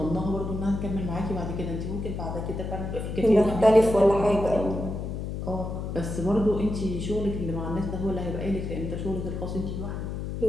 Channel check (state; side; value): noise; left; hum, 5 dB below the sound